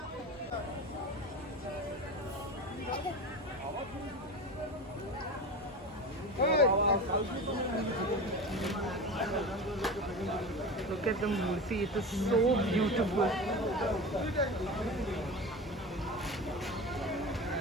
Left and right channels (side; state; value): both; normal; correlation 0.29